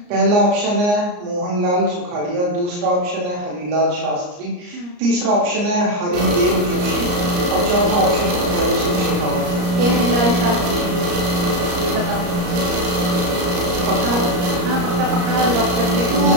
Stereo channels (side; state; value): left; late; 34 ms